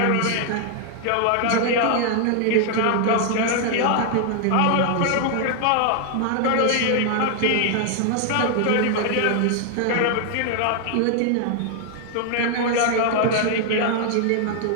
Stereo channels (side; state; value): both; different; correlation 0.00